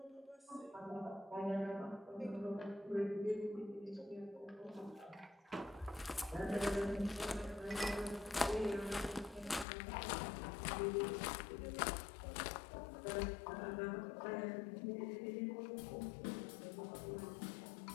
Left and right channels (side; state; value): right; drops out; at 9.7 s